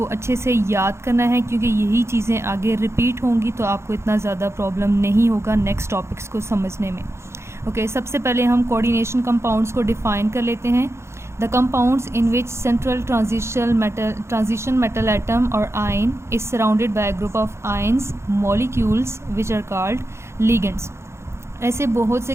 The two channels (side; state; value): left; late; 0.13 ms